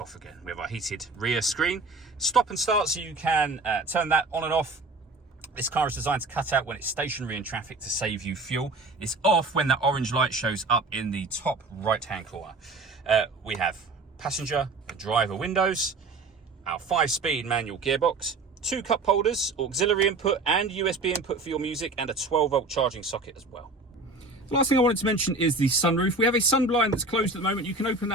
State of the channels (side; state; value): left; quieter; 3.4 dB